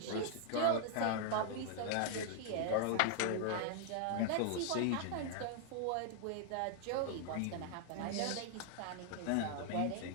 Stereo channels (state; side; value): different; both; correlation 0.00